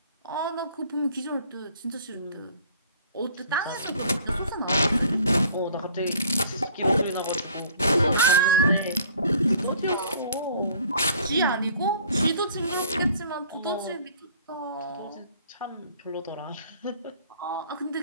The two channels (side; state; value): both; inverted; correlation -0.53